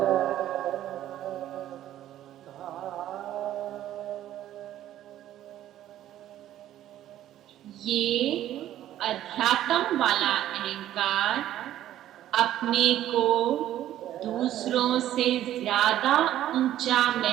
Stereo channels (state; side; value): quieter; left; 12.6 dB